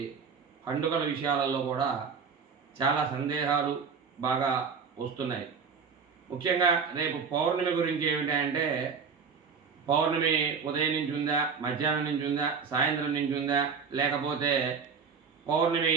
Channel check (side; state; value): left; quieter; 5.7 dB